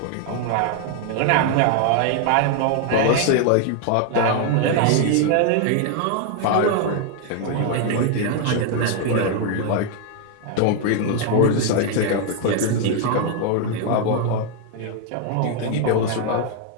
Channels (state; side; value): different; both; correlation 0.00